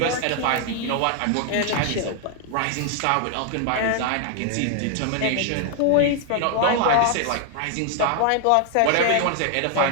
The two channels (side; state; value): both; different; correlation 0.00